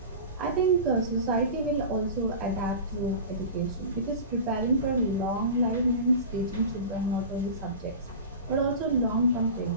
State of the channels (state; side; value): inverted; both; correlation -0.32